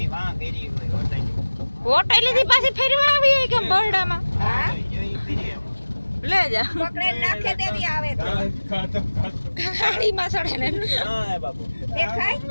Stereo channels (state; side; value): inverted; both; correlation -1.00